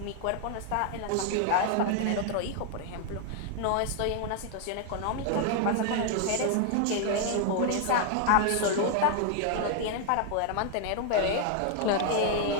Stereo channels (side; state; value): both; different; correlation 0.00